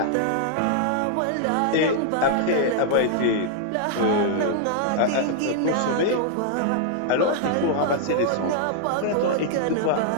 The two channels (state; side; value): different; both; correlation -0.01